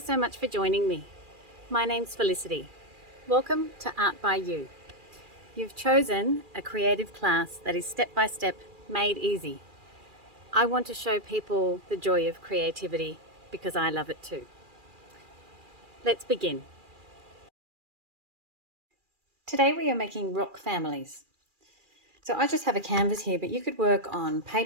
so much for joining me. My name's Felicity. Welcome to Art by You. You've chosen a creative class that is step by step made easy. I want to show people the joy of creativity because I love it too. Let's begin. Today we are making rock families. So I just have a canvas here, but you could work on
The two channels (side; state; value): left; late; 2.4 ms